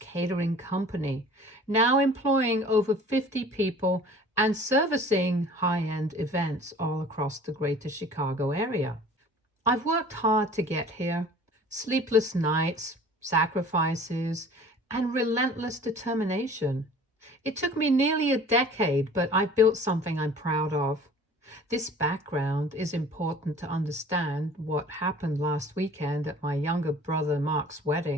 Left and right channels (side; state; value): both; normal; correlation 0.47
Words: company, now employing over 50 people and servicing high end events all across the greater Chicago area. I've worked hard to get here, sleepless nights, sacrifices, and relentless determination. It took me nearly a decade, but I've built something I'm proud of. This background is important to understand what happened last weekend at my younger brother Mark's